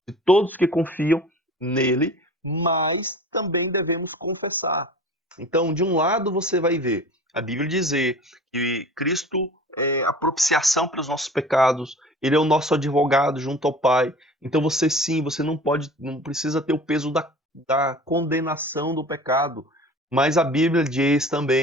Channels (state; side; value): normal; both; correlation 0.41